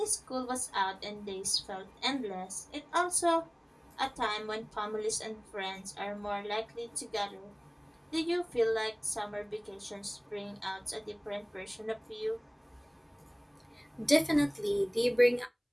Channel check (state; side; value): identical; both; correlation 1.00